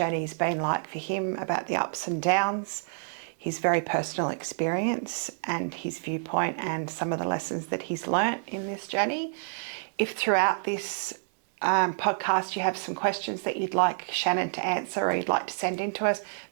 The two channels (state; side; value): silent; left; 59 dB below the other